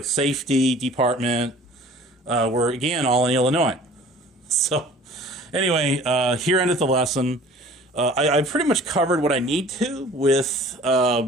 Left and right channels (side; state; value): both; normal; correlation 0.48